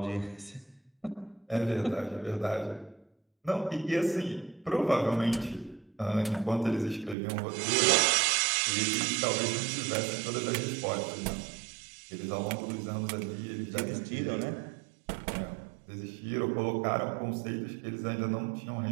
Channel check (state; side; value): drops out; left; at 7.2 s